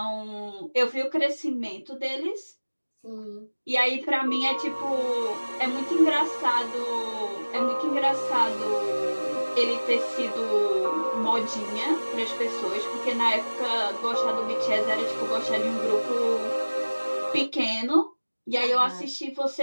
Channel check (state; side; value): inverted; both; correlation -1.00